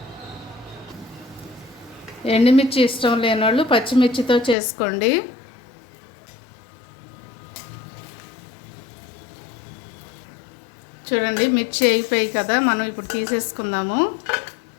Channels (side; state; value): right; drops out; at 4.5 s